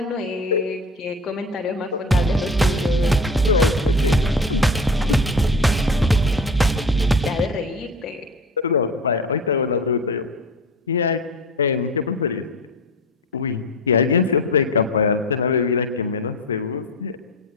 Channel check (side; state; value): both; normal; correlation 0.32